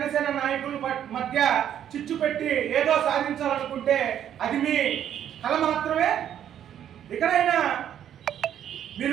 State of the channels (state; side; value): quieter; left; 10.1 dB